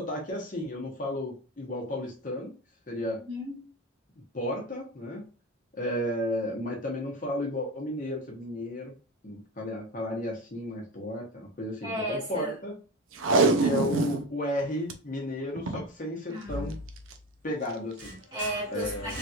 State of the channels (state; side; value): normal; both; correlation 0.24